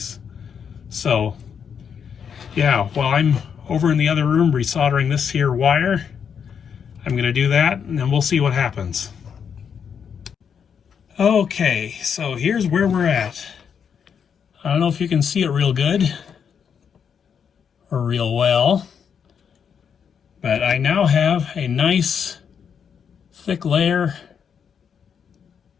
So yeah, while I'm over in the other room resoldering this here wire, I'm gonna do that and then we'll see what happens. Okay, so here's where we're at. I don't know if you can see it real good or real well, but I now have a nice thick layer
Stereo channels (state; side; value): quieter; right; 7.3 dB